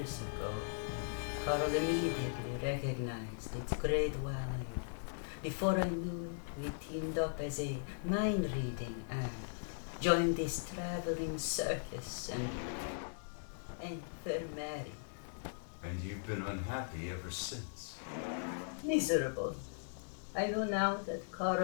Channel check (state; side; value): silent; right; digital silence